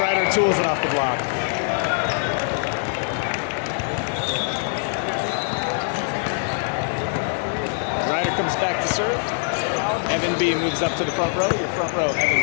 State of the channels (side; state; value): right; silent; digital silence